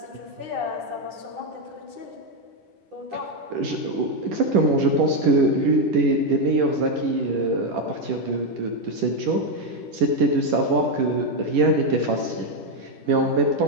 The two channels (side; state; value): left; late; 10 ms